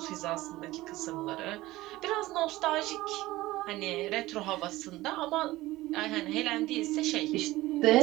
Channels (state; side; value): quieter; left; 17.9 dB